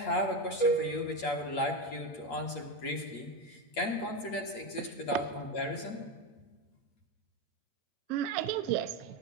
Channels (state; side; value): late; right; 8.5 ms